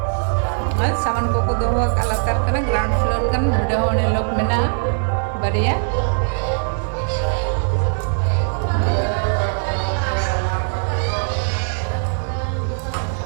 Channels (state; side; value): silent; left; digital silence